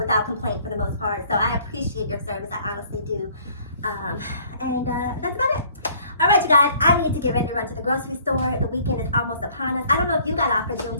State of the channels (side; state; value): both; inverted; correlation -0.57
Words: complaint for the most part. So I appreciate your service. I honestly do. And that's about it. All right, you guys, I need to get ready to run to the grocery store. The weekend is almost upon us. I don't know if you got off for